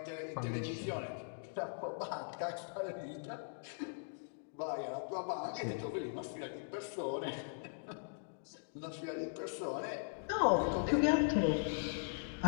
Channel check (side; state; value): right; silent; digital silence